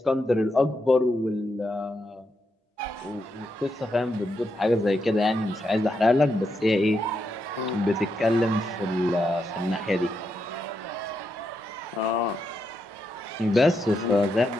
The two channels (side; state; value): both; normal; correlation 0.83